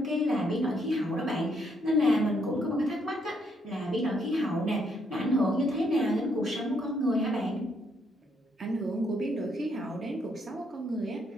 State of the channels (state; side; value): normal; both; correlation 0.73